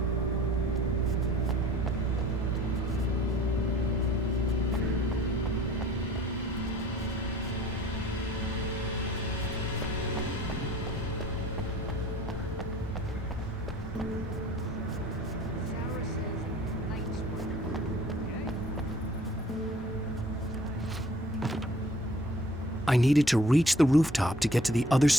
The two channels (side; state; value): both; normal; correlation 0.52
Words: I needed to reach the rooftop to get to the other